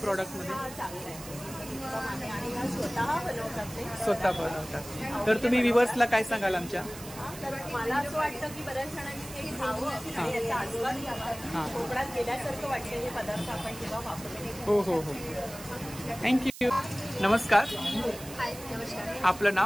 मध्ये. चांगलं आहे. आणि स्वतः बनवतात ते. स्वतः बनवतात. तर तुम्ही व्ह्युअर्सला काय सांगाल आमच्या. तर मला असं वाटतं की बऱ्याच जणांनी ते खावं आणि याचा आस्वाद घ्यावा. कोकणात गेल्यासारखं वाटतं हे पदार्थ आपण जेव्हा वापरतो. हो. थँक्यू. नमस्कार. हाय. नमस्कार. आपलं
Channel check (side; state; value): right; noise; hiss, 14 dB below the sound